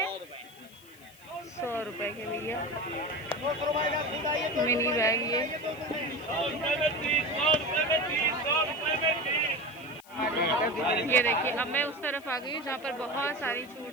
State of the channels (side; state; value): left; noise; hiss, 24 dB below the sound